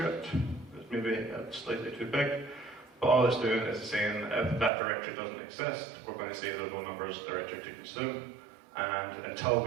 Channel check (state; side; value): drops out; left; at 4.7 s